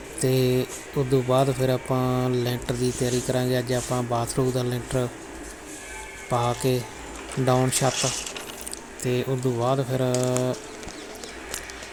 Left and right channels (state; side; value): identical; both; correlation 1.00